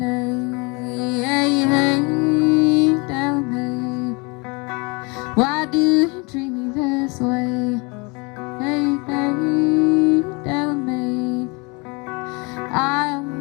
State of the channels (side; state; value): right; quieter; 29.3 dB